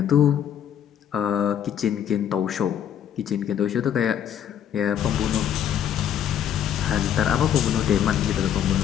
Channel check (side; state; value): right; quieter; 9.6 dB